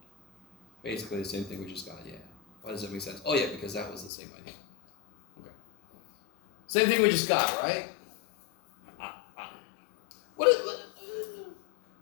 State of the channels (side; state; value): right; drops out; at 4.1 s